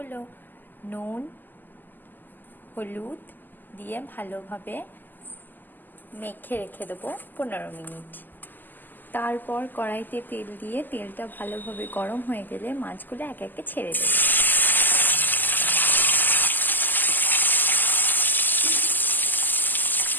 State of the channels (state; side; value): late; right; 0.088 ms